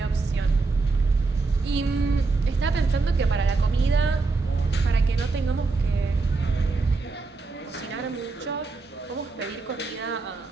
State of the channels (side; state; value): left; quieter; 3.9 dB